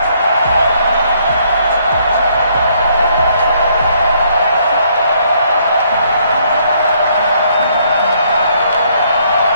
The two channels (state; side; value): inverted; both; correlation -0.68